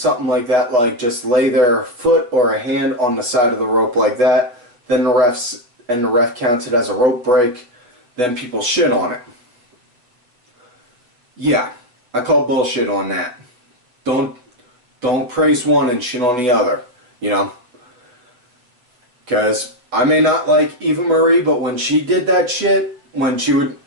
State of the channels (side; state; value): left; late; 8.1 ms